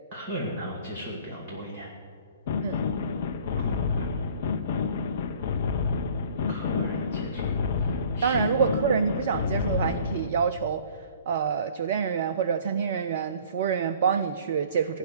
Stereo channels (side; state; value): both; inverted; correlation -0.51